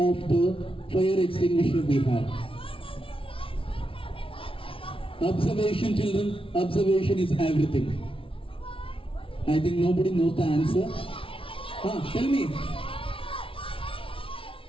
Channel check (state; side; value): late; right; 0.26 ms